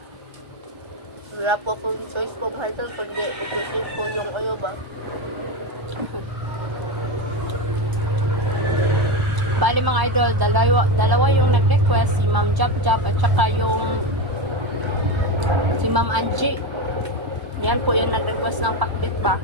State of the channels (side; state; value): left; late; 1.0 ms